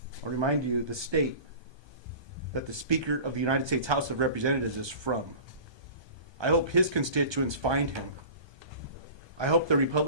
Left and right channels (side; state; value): left; late; 1.2 ms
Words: I'll remind you the state that the Speaker of the United States House of Representatives is from. I hope his constituents find him. I hope the